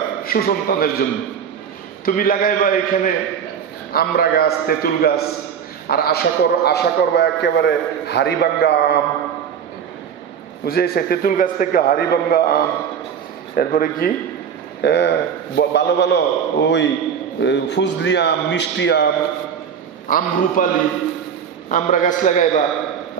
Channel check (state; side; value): quieter; left; 7.7 dB